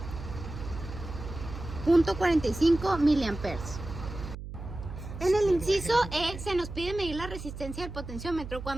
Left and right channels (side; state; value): right; noise; hum, 10 dB below the sound